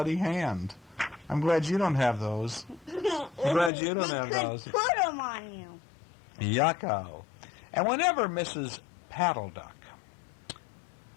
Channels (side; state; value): right; drops out; at 3.7 s